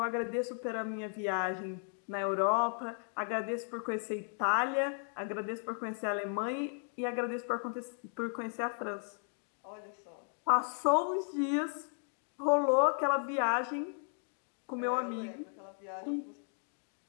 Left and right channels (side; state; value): right; silent; 54 dB below the other